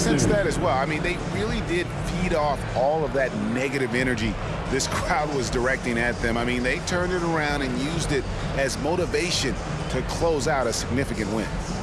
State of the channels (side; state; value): both; identical; correlation 1.00